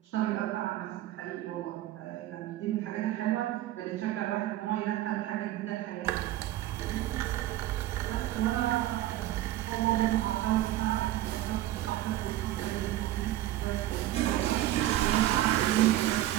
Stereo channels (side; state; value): left; quieter; 14.6 dB